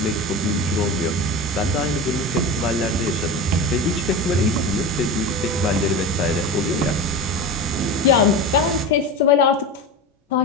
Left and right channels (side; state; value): both; normal; correlation 0.26